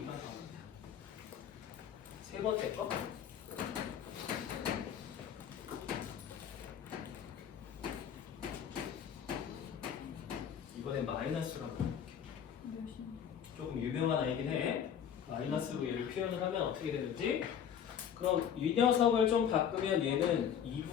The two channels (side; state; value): right; quieter; 8.6 dB